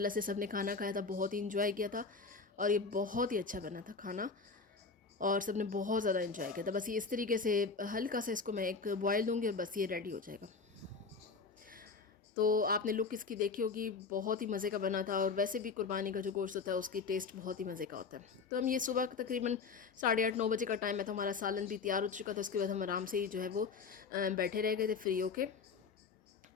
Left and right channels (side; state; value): right; quieter; 4.8 dB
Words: से सब ने खाना खाया था, बहुत ही इंजॉय किया था, और ये बहुत ही अच्छा बना था खाना, और सब ने बहुत ज़्यादा इंजॉय किया था। बस ये इस तरीके से हल्का सा इसको मैं एक बॉयल दूँगी, और बस ये रेडी हो जाएगा। तो आपने लुक इसकी देखी होगी, बहुत ही मज़े का बना था। और वैसे भी कुर्बानी का जो गोश्त होता है उसकी टेस्ट बहुत ही मज़े का होता है। तो हम ये सुबह तकरीबन 8:30-9 बजे का टाइम है, तो हमारा सालन भी तैयार हो चुका था। उसके बाद हम आराम से ही जो है वो बैठे रह गए थे फ्री होके,